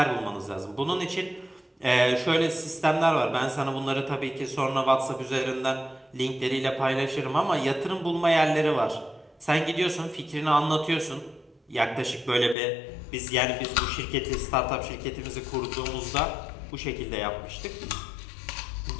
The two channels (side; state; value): right; drops out; at 12.6 s